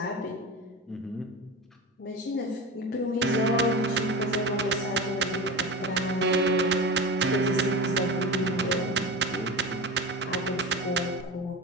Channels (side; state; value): both; normal; correlation 0.27